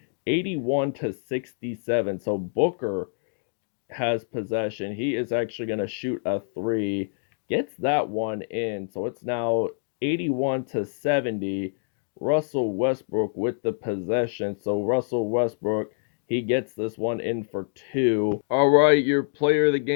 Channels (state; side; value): silent; right; digital silence